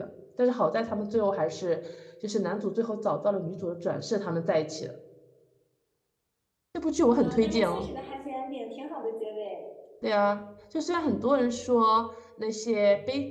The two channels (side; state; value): both; identical; correlation 1.00